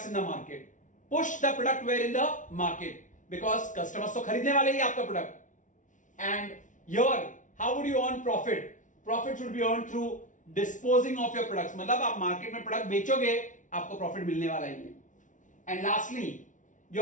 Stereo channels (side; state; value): right; late; 0.37 ms